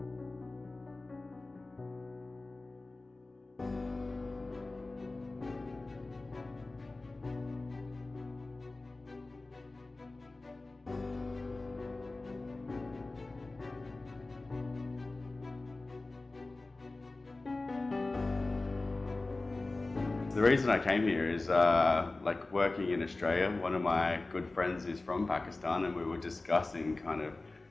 The reason I came here is like working in Australia. One of my good friends is from Pakistan and we were discussing kind of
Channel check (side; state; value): right; quieter; 3.2 dB